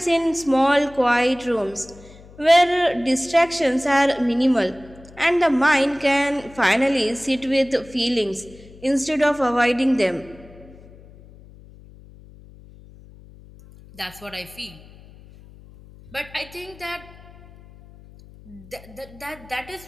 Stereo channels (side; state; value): left; noise; hum, 22 dB below the sound